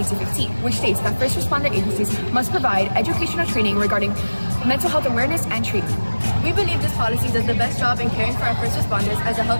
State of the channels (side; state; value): both; inverted; correlation -1.00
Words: which states that first responder agencies must provide educational training regarding mental health awareness and treatment. We believe this policy does the best job in caring for our first responders as a